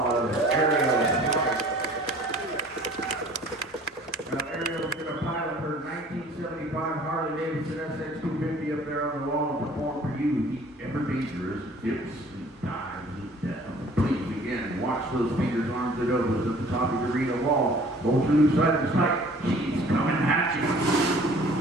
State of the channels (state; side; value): normal; both; correlation 0.51